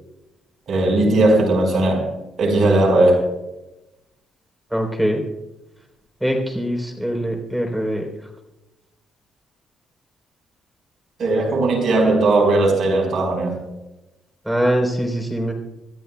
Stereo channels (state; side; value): normal; both; correlation 0.82